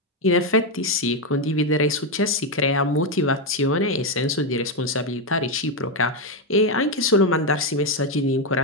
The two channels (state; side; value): normal; both; correlation 0.06